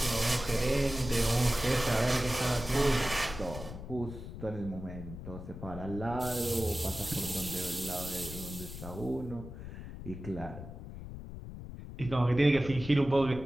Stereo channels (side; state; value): left; noise; rumble, 11 dB below the sound